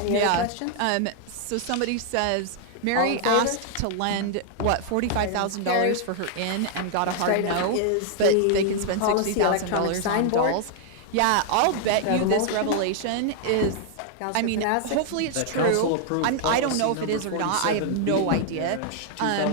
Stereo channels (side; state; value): both; different; correlation 0.00